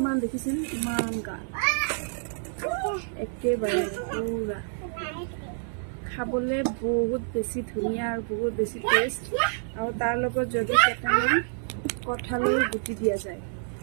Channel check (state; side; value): silent; left; 59 dB below the other